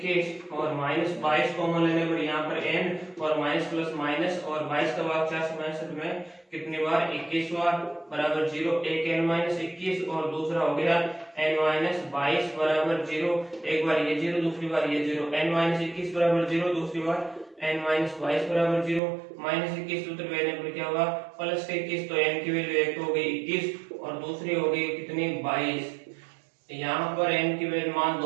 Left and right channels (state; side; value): drops out; left; at 19.0 s